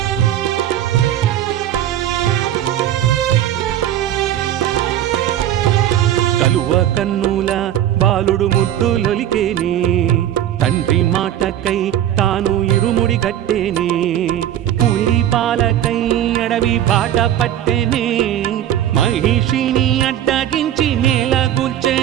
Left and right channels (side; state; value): left; quieter; 11.5 dB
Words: కలువ కన్నుల బాలుడు ముద్దులొలికేనే తండ్రి మాటకై తాను ఇరుముడి గట్టేనే. పులి పాలకై అడవి బాట పట్టెనే మహిషిని అడ్డగించి నేల